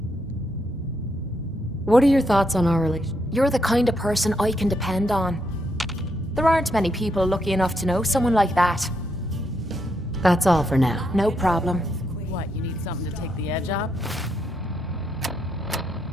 What are your thoughts on our relationship? You're the kind of person I can depend on. There aren't many people lucky enough to know someone like that. That's all for now. No problem. What, you need something to take the edge off?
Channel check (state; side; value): normal; both; correlation 0.78